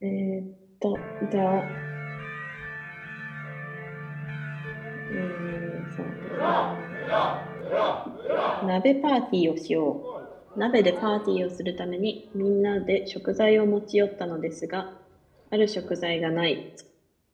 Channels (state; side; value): identical; both; correlation 1.00